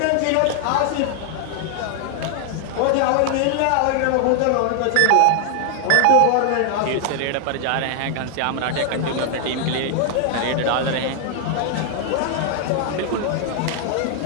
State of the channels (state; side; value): different; both; correlation 0.00